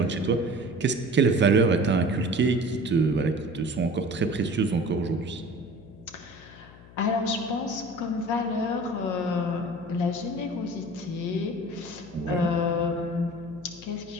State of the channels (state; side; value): noise; left; hum, 20 dB below the sound